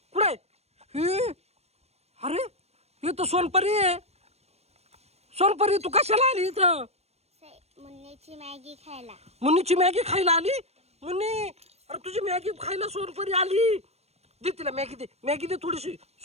कुठे? हे अरे हे तर सोनपरी आहे. सोनपरी तू कशाला आली इथं? मुन्नीची मॅगी खायला. मुन्नीची मॅगी खायला आली? मुन्नी अरे तुझी मॅगी खायला सोनपरी आली. दे तिला मॅगी, दे मॅगी, दे थोडीशी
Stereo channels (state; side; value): late; left; 0.31 ms